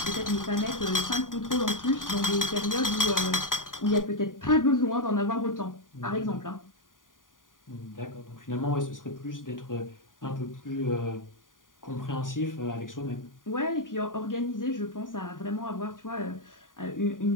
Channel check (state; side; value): late; right; 0.89 ms